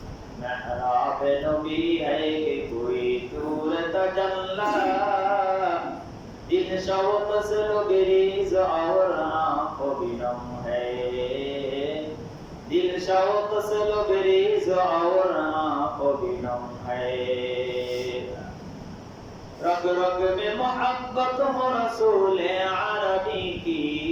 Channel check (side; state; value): both; identical; correlation 1.00